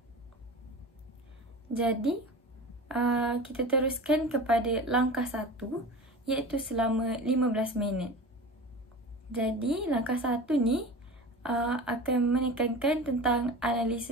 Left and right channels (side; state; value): both; normal; correlation 0.33